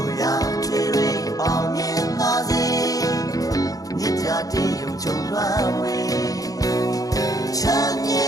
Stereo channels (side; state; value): right; late; 0.17 ms